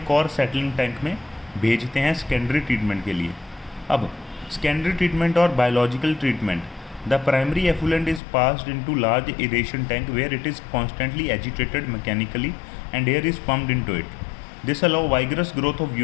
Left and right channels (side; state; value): right; drops out; at 8.2 s